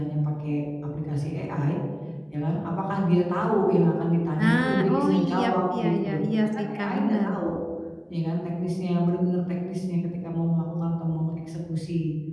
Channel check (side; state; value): both; identical; correlation 1.00